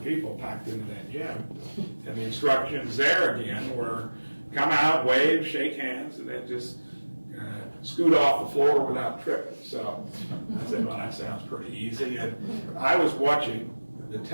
people packed into that gym. And the instructions there again were come out, wave, shake hands, and then just scoot off the floor without tripping. So I said, well, that sounds pretty easy. And I was watching the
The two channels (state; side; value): inverted; both; correlation -1.00